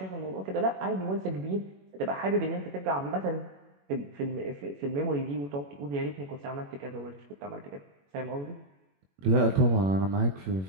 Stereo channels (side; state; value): left; late; 21 ms